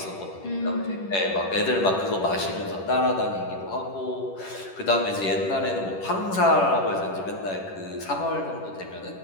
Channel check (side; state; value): right; late; 10 ms